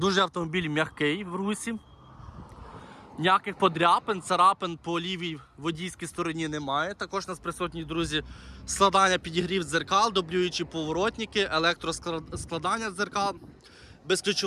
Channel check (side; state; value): both; identical; correlation 1.00